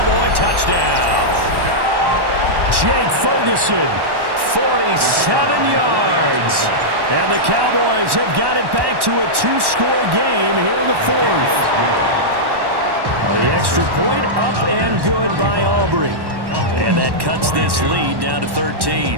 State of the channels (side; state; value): left; late; 1.1 ms